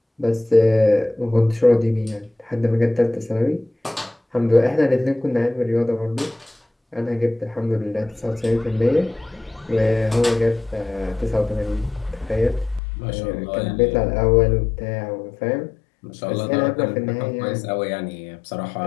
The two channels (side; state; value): right; drops out; at 12.8 s